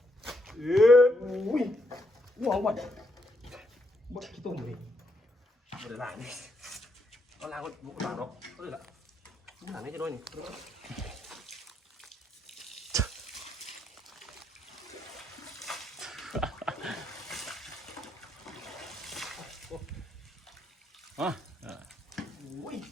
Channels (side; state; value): both; normal; correlation 0.78